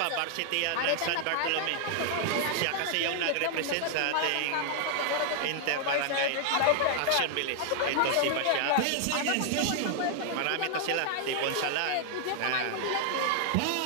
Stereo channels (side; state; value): both; different; correlation 0.00